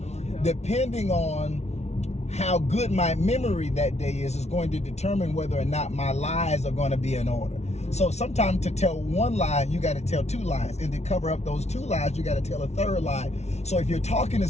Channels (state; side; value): late; right; 0.32 ms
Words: depending on how good my memory that day is going to determine whether or not my lies are going to be in order. So sometimes to tell one lie, you got to tell 2 lies. And to cover up those 2 lies, you got to tell a 3rd lie. So if you're talking to